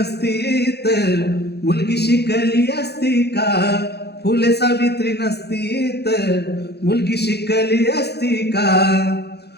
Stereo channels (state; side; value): late; right; 0.48 ms